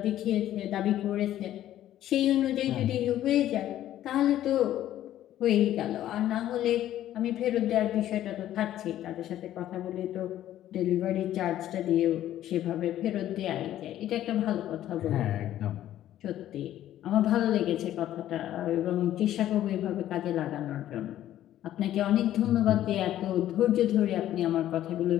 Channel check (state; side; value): quieter; right; 12.6 dB